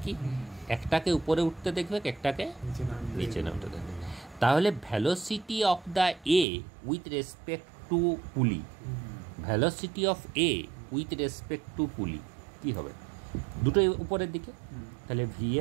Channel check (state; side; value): drops out; left; at 6.5 s